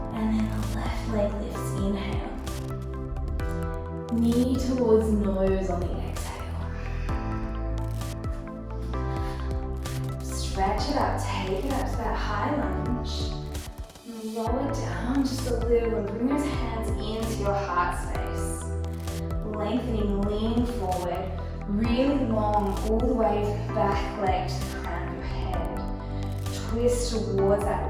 And then the left leg lifts, inhale. Knee towards nose on the exhale. Stretch it up, take it up to that high lunge. Lower down just a little and bring those hands into your heart space. Lengthening, leaning forward, really long all the way back leg to the crown of your head. Twist towards that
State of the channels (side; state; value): both; identical; correlation 1.00